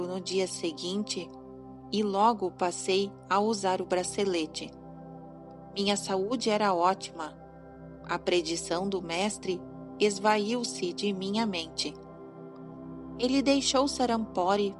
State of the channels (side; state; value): both; identical; correlation 1.00